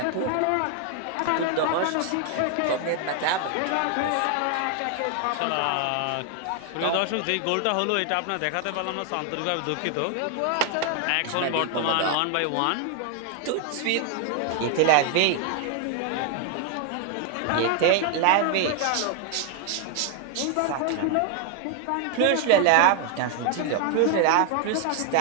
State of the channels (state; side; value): different; both; correlation 0.00